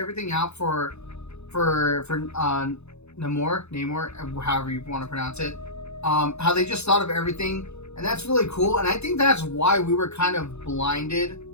out for Namor, however you want to pronounce it. How they just thought of everything, and that's really cool. And I think that's why we were kind of blinded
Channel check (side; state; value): right; late; 0.81 ms